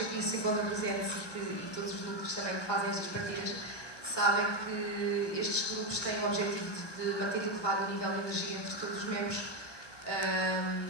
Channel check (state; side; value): late; right; 1.2 ms